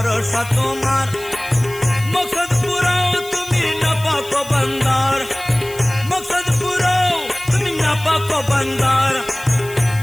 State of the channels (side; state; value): left; noise; hiss, 17 dB below the sound